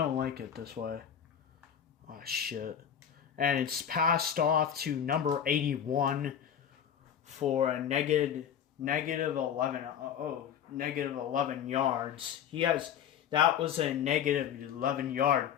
like it this way. Oh shit. And it's passed off to number 81 for a negative 11. Negative 11 yards. That was a negative 11-yard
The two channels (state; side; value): quieter; right; 8.8 dB